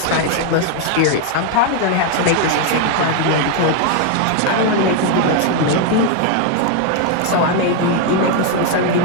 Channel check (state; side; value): different; both; correlation 0.00